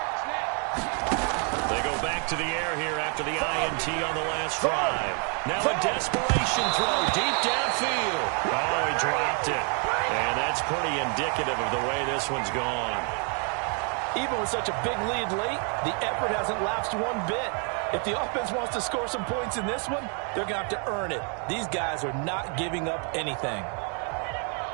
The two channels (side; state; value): left; quieter; 39.7 dB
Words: To the air here after the INT on the last drive. Now a desperation throw deep downfield. Oh, he dropped it. And that's pretty indicative of the way this one's gone. Even with such a big lead late, the effort hasn't lapsed one bit. If the offense wants to score some points in this one, they're going to have to earn it. These guys are not giving up anything.